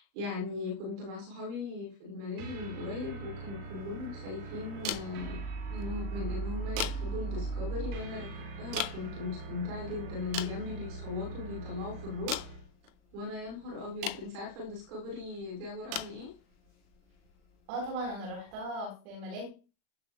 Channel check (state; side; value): late; left; 37 ms